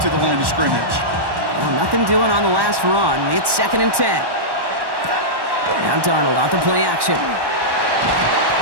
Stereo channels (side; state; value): left; late; 1.1 ms